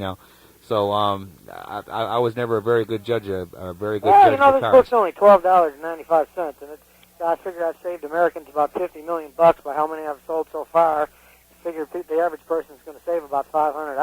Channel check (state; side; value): identical; both; correlation 1.00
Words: So I was never a very good judge, a very good judge you know, of this cars. book's only $12.95, and I figured I've saved Americans about $50 million by how many I've sold so far. I figured the average person is going to save about $500,